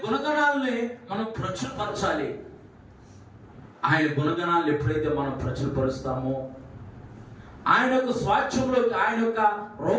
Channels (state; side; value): identical; both; correlation 1.00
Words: గుణగణాలని మనం ప్రచురపరచాలి. ఆయన గుణగణాలను ఎప్పుడైతే మనం ప్రచురపరుస్తామో, ఆయన యొక్క స్వాస్థ్యంలోకి, ఆయన యొక్క